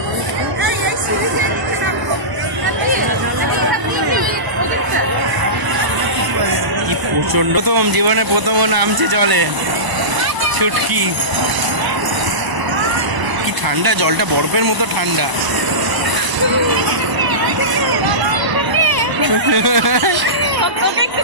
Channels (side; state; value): left; late; 1.0 ms